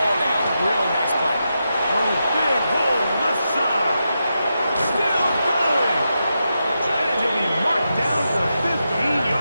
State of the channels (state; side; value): inverted; both; correlation -0.87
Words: down, really nice play. Oh, big hole left side. Still going. And he'll be marked down to the